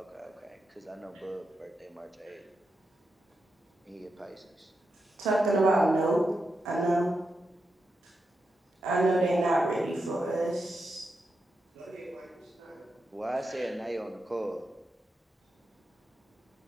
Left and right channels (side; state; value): both; normal; correlation 0.87